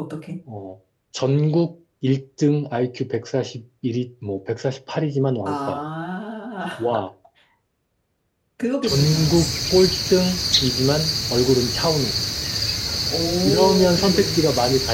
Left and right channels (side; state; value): both; identical; correlation 1.00